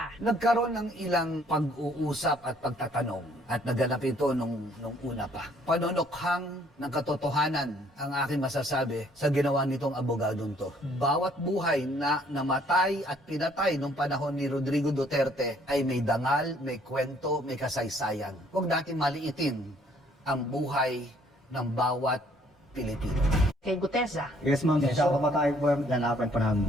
Nagkaroon ng ilang pag-uusap at pagtatanong at naganap ito nung una pa. Panonokhang ng katotohanan ang aking masasabi sa ginawa nitong abogadong to. Bawat buhay na namatay at pinatay nung panahon ni Rodrigo Duterte ay may dangal, may kwento, may kasaysayan. Huwag natin maliitin ang buhay ng bawat Pilipino. Kay Gutesa. Yes, ma'am. Siya pamatay po yung lalapan pa namin.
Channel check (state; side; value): normal; both; correlation 0.62